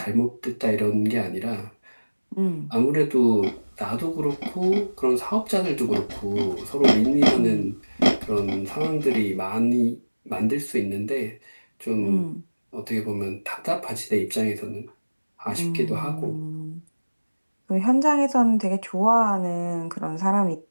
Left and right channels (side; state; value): both; inverted; correlation -1.00